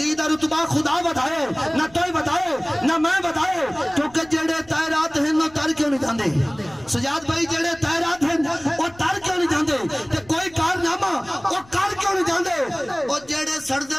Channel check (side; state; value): left; noise; rumble, 25 dB below the sound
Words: دا رتبہ خدا بتائے نہ توئے بتائے نہ میں بتائے کیونکہ جڑے تائرات ہیں نو تر کیوں نہیں جاندے سجاد بھائی جڑے تائرات ہیں وہ تر کیوں نہیں جاندے تے کوئی کارنامہ وہ کر کیوں نہیں جاندے وہ جڑے